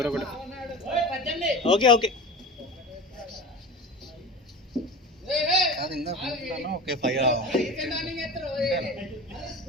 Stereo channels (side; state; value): both; normal; correlation 0.32